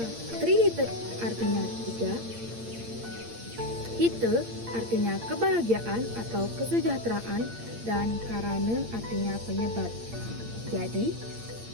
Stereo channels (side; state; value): left; late; 8.7 ms